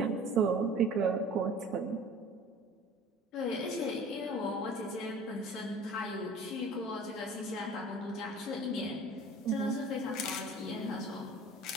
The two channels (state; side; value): normal; both; correlation 0.44